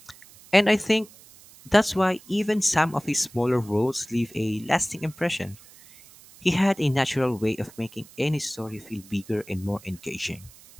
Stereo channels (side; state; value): right; noise; hiss, 23 dB below the sound